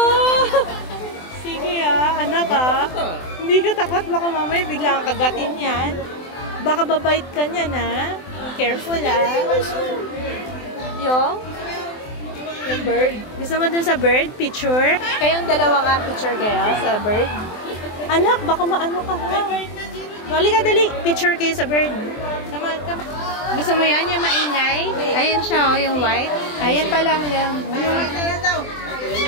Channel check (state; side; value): late; right; 24 ms